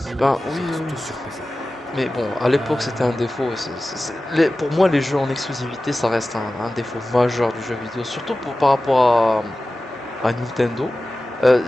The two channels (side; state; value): both; normal; correlation 0.95